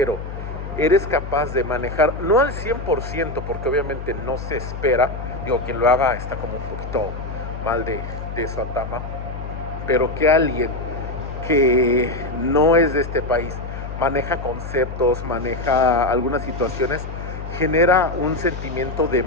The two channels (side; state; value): left; noise; hum, 8 dB below the sound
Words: eres capaz de manejar, no al 100%, porque obviamente no se espera, digo, quien lo haga está como un poquito mal de su atama, pero que alguien que no es de este país maneja conceptos, maneja algunas situaciones, genera un sentimiento de